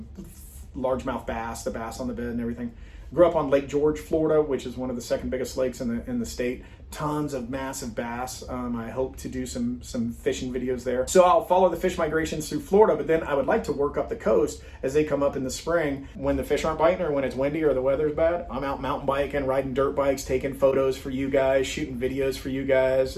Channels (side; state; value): both; identical; correlation 1.00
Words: largemouth bass, the bass on the bed and everything. Grew up on Lake George, Florida, which is one of the second biggest lakes in the state. Tons of massive bass. I hope to do some fishing videos there. So I'll follow the fish migrations through Florida, but then I would like to work up the coast as they come up in the spring when the fish aren't biting or when it's windy or the weather's bad. I'm out mountain biking, riding dirt bikes, taking photos for you guys, shooting videos for you guys,